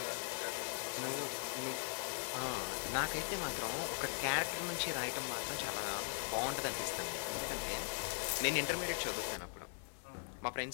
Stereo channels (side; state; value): right; silent; 51 dB below the other